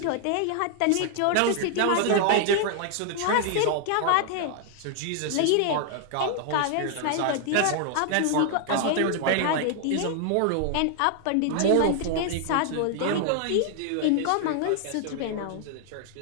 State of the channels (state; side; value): different; both; correlation 0.00